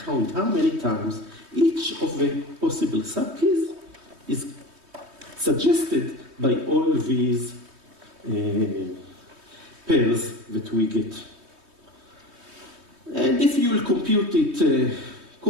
count how many times each of the possible subkeys is suggested by all these pairs that we get. And if you will compute it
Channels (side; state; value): left; late; 3.2 ms